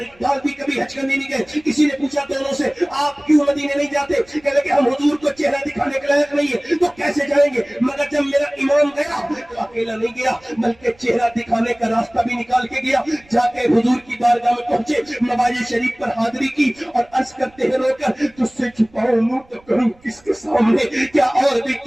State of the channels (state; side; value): noise; right; rumble, 30 dB below the sound